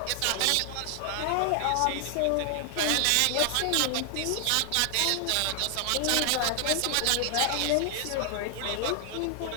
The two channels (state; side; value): different; both; correlation 0.00